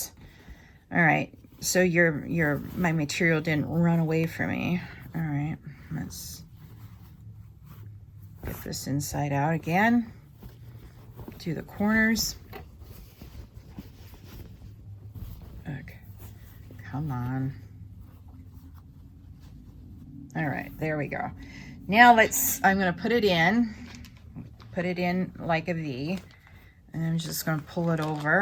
All right. So my material didn't run away from me. All right. Let's get this inside out again. Do the corners. Okay. Come on. All right, there we go. Now I'm gonna put it in like a V, and I'm just gonna pull it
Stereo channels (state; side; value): identical; both; correlation 1.00